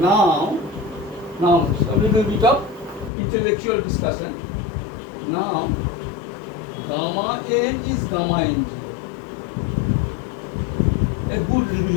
Now a little bit of intellectual discussion. Now gamma n is gamma n0. A good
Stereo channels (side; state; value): right; drops out; at 3.1 s